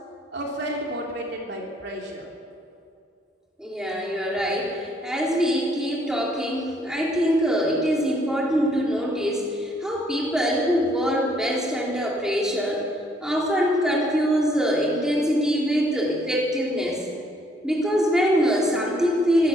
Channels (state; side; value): normal; both; correlation 0.67